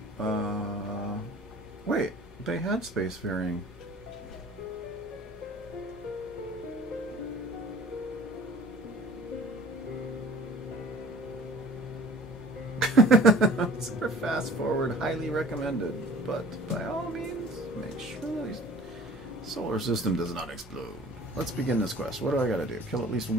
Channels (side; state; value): both; normal; correlation 0.47